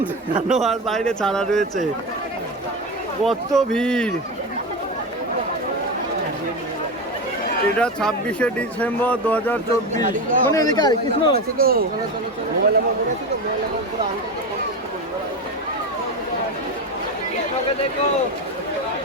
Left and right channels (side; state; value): both; normal; correlation 0.19